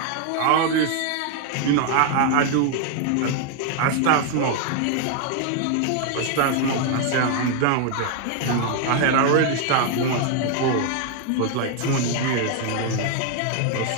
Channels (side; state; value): both; different; correlation 0.00